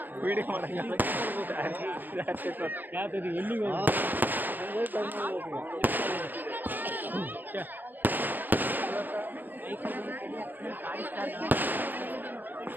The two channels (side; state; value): left; late; 0.087 ms